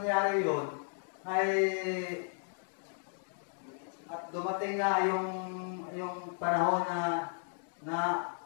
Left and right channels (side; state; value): right; silent; 55 dB below the other